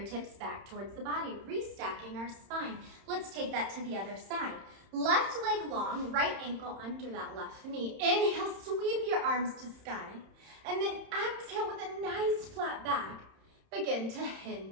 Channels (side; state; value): left; late; 31 ms